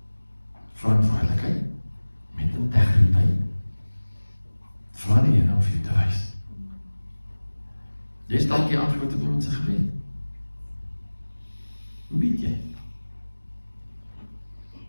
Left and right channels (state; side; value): inverted; both; correlation -1.00